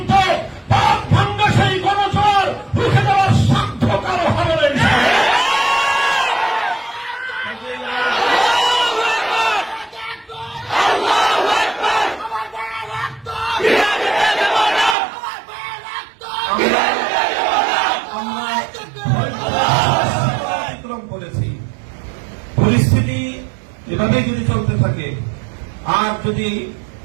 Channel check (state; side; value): drops out; left; at 15.0 s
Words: পাক ভাঙ্গা সেই গণজোয়ার রুখে দেওয়ার সাধ্য কারো হবে না। পরিস্থিতি এভাবেই যদি চলতে থাকে, আর যদি